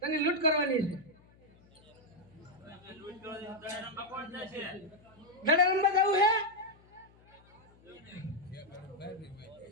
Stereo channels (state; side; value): noise; left; hum, 28 dB below the sound